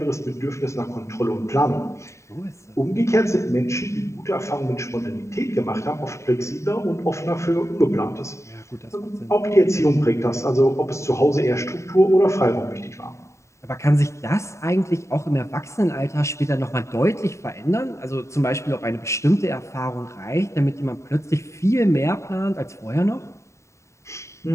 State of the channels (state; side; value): late; right; 0.14 ms